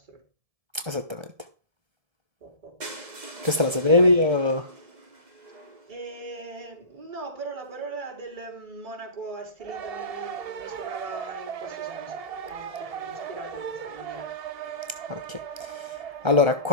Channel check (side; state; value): left; late; 1.3 ms